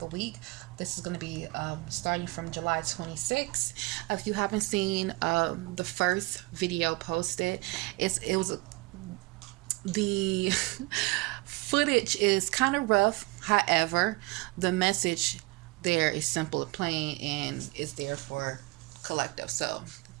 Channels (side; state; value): left; quieter; 23.9 dB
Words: week. This is going to be starting from July 26th. If you haven't seen the first video posted, it was the footage is kind of rough. However, the message there is simple and plain, and it's there for collective. So